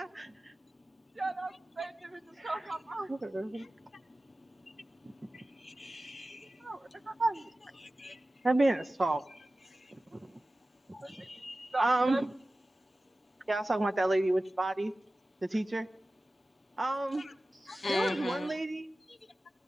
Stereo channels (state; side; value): normal; both; correlation 0.96